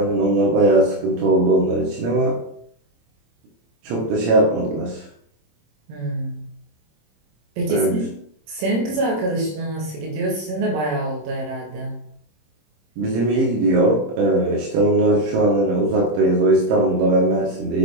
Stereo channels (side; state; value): left; late; 26 ms